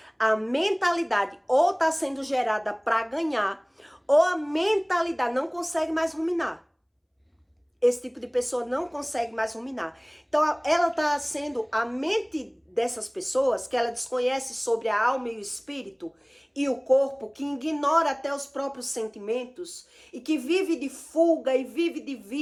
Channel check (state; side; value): identical; both; correlation 1.00